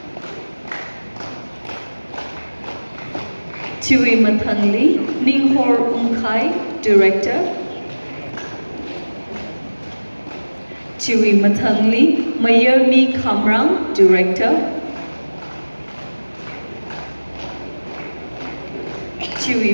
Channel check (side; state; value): both; inverted; correlation -1.00